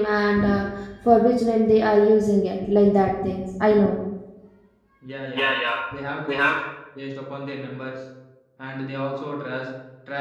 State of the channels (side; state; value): both; identical; correlation 1.00